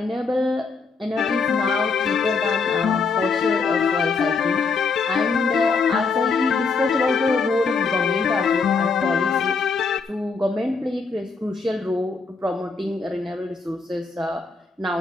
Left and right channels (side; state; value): right; quieter; 4.6 dB